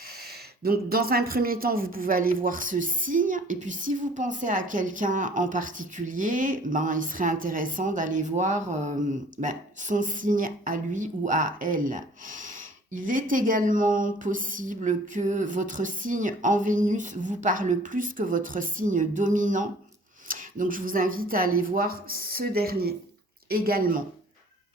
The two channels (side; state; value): both; normal; correlation 0.52